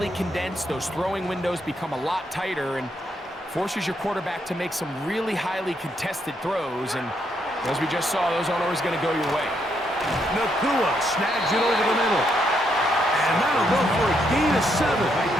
condensed. Those throwing windows become a lot tighter and forces your quarterback to make some really highly contested throws. And as we just saw, those aren't always going to go your way. Nakua snags it over the middle. And that'll go for a gain of 7.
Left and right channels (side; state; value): both; normal; correlation 0.76